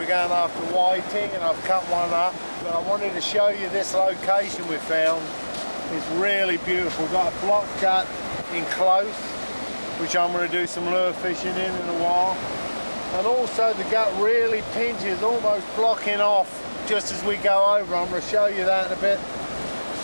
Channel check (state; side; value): inverted; both; correlation -1.00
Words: going after whiting, and I've cut one up. But I wanted to show you this location we found. It's really beautiful. We've got a block gut in close, which I'm going to do some lure fishing in a while. And also the gut really pinches, almost blocking off just as we go over. I'm going to show you that in a bit